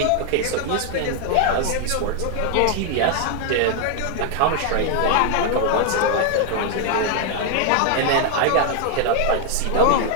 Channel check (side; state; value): both; different; correlation 0.00